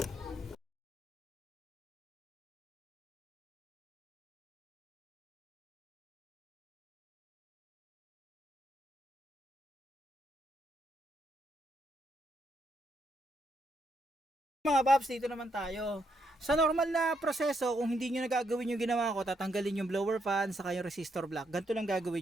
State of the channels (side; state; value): both; normal; correlation 0.77